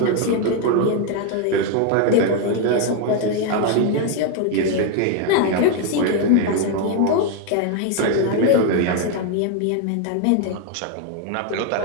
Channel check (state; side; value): different; both; correlation 0.01